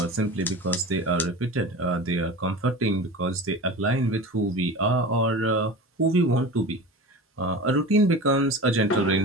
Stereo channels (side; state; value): both; normal; correlation 0.32